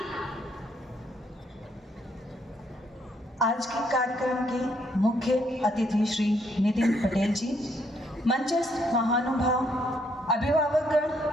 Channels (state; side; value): normal; both; correlation 0.71